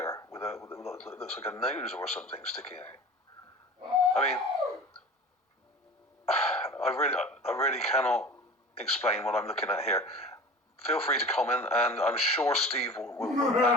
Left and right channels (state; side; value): normal; both; correlation 0.36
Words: with looks like a nose or something sticking out. I mean, I really cannot explain what I'm looking at here. Feel free to comment, and I'm sure Steve will